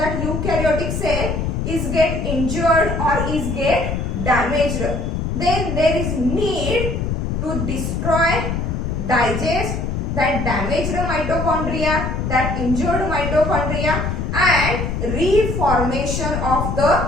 eukaryotic cell is get injured or is get damaged, then there is need to destroy, digest that damaged mitochondria, that injured mitochondria, and reformation of the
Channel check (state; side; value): noise; left; rumble, 2 dB below the sound